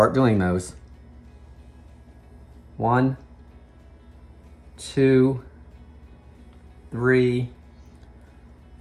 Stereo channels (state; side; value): identical; both; correlation 1.00